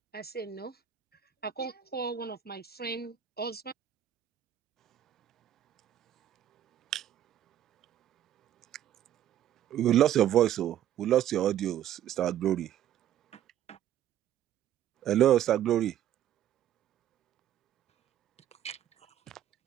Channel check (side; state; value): left; quieter; 11.1 dB